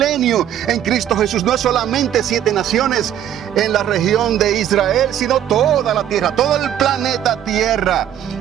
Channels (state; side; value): quieter; left; 10.6 dB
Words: en Cristo Jesús. No es solamente 7 naciones en la región de Israel, sino toda la tierra, todo el planeta Tierra.